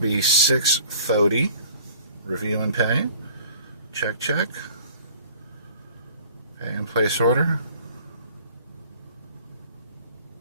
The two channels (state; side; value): inverted; both; correlation -0.51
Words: $6.30. Review and pay. Check, check. Pay and place order.